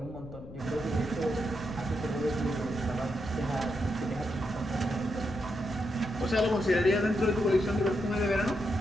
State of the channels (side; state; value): left; noise; rumble, 15 dB below the sound